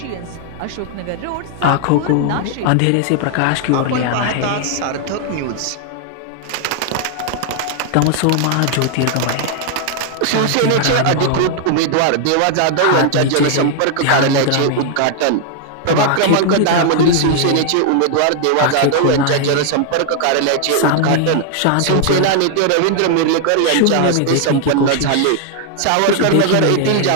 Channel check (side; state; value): both; different; correlation 0.00